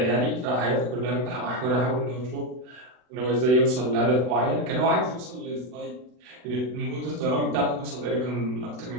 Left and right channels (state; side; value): late; left; 40 ms